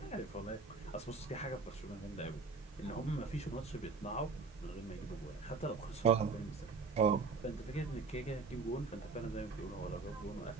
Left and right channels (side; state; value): left; quieter; 4.5 dB